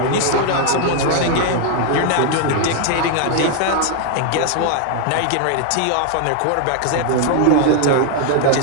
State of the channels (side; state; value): both; different; correlation 0.00